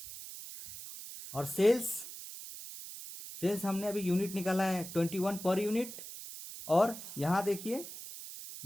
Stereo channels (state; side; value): noise; right; hiss, 11 dB below the sound